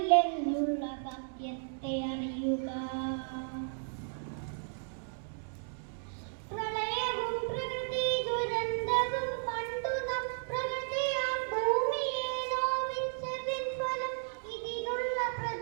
സത്യത്തെ അറിയുക. പ്രളയവും പ്രകൃതി ദുരന്തവും കണ്ടു നാം പ്രകൃതിയാം ഭൂമിയെ നോവിച്ചതിൻ ഫലം ഇതിനുള്ള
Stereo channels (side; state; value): left; silent; digital silence